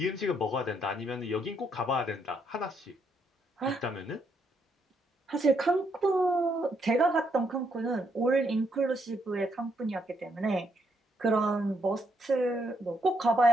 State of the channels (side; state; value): both; normal; correlation 0.75